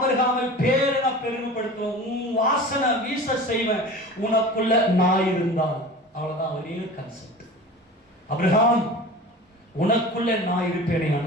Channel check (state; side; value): normal; both; correlation 0.36